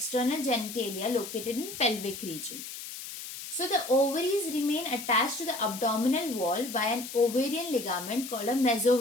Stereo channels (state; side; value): noise; left; hiss, 10 dB below the sound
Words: genitalia located in pelvic region. So the ovaries remain attached to the abdominal wall by an ovarian ligament called a